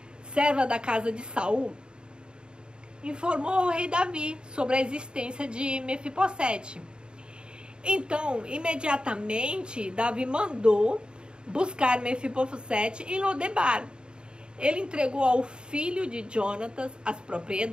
serva da casa de Saul, informou ao rei Davi sobre a existência de Mefibosete. Então, imediatamente, Davi mandou buscar Mefibosete em Lodebar. Ele entregou ao filho de Jonatas as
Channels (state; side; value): late; left; 0.050 ms